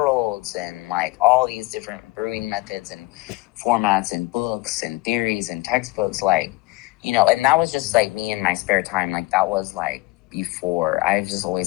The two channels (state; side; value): quieter; right; 22.1 dB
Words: and like all these different brewing methods and formats and books and theories and textbooks, like, and that was just like me in my spare time. Like that was like before. I've just